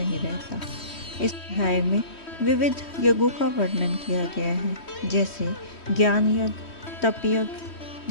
रहता। इस अध्याय में विविध यज्ञों का वर्णन किया गया है, जैसे ज्ञान यज्ञ, तप यज्ञ,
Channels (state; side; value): late; right; 3.1 ms